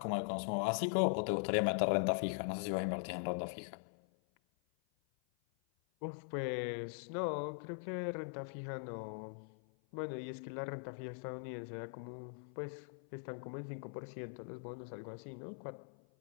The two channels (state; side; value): silent; right; 50 dB below the other